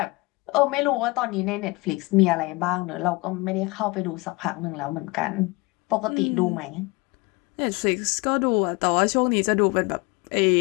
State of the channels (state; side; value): quieter; right; 25.0 dB